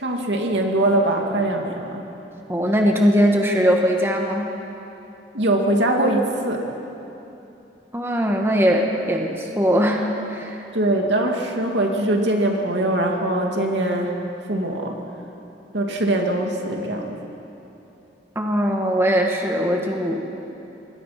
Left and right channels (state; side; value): normal; both; correlation 0.49